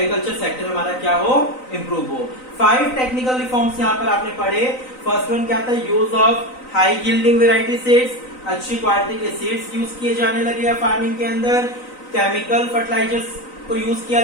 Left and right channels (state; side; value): late; right; 3.9 ms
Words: सेक्टर हमारा क्या हो, इंप्रूव हो। 5 टेक्निकल रिफॉर्म्स यहाँ पर आपने पढ़े। फर्स्ट वन क्या था, use of high yielding variety seeds, अच्छी क्वालिटी के सीड्स यूज किए जाने लगे फार्मिंग के अंदर। केमिकल फर्टिलाइजर्स को यूज किया